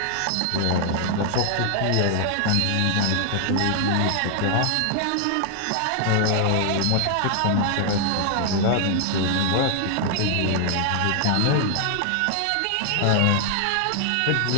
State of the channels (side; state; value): both; different; correlation 0.00